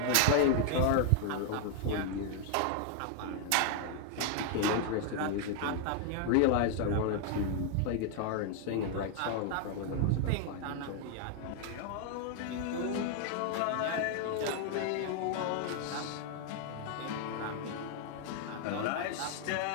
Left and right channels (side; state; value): both; different; correlation 0.00